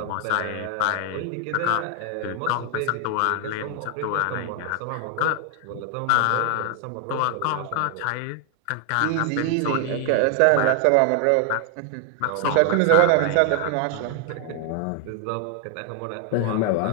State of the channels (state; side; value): different; both; correlation 0.00